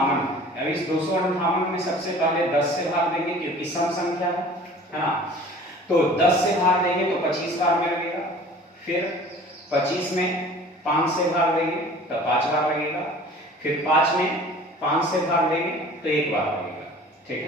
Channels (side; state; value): both; normal; correlation 0.46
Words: अब इस 258 में सबसे पहले 10 से भाग देंगे क्योंकि सम संख्या है ना। तो 10 से भाग देंगे तो 25 बार में लगेगा। फिर 25 में 5 से भाग देंगे तो 5 बार लगेगा। फिर 5 में 5 से भाग देंगे तो 1 बार लगेगा। ठीक